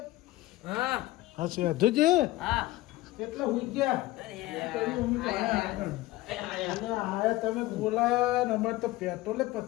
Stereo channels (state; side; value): quieter; right; 17.9 dB